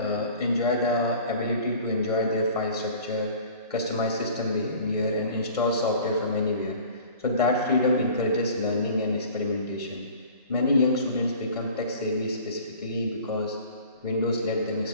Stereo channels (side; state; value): both; inverted; correlation -0.45